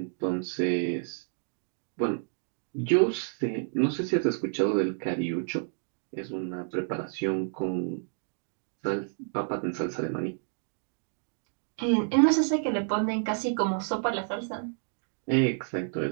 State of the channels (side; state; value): left; silent; 58 dB below the other